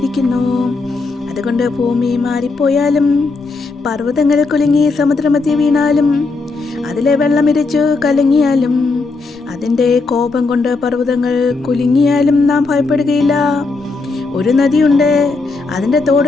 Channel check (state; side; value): quieter; right; 3.9 dB